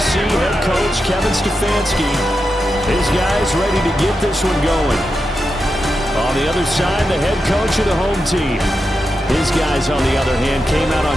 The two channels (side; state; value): both; normal; correlation 0.88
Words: head coach Kevin Stefanski. His guys ready to get this one going. On the other side, the head coach of the home team. His guys, on the other hand, came out